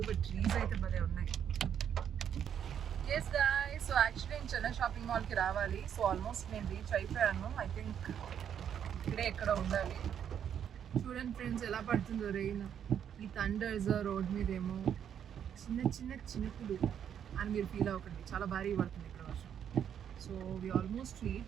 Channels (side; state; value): left; quieter; 8.9 dB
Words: బట్ ట్రీస్ అయితే భలే ఉన్నాయి. ఎస్ గాయ్స్, సో యాక్చువల్లీ నేను చెన్నై షాపింగ్ మాల్కి రావాలి. సో ఆల్మోస్ట్ నేను రీచ్ అయిపోయాను. ఐ థింక్ ఇక్కడే ఎక్కడ ఉండాలి. చూడండి ఫ్రెండ్స్ ఎలా పడుతుందో రెయిన్. ఈ థండర్స్ రోడ్ మీద ఏమో చిన్న చిన్న చినుకులు అని మీరు ఫీల్ అవ్వకండి, చాలా భారీ పడుతుంది ఇక్కడ వర్షం. So we almost